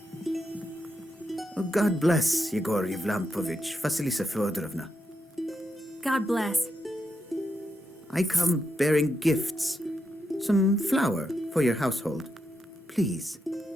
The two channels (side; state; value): both; normal; correlation 0.84